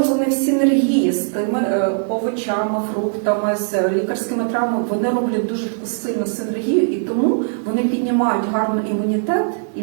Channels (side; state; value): left; silent; digital silence